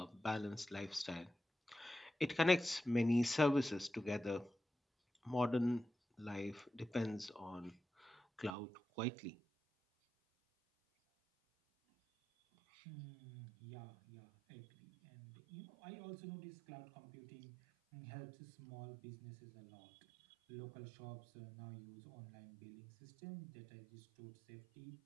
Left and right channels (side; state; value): left; drops out; at 8.6 s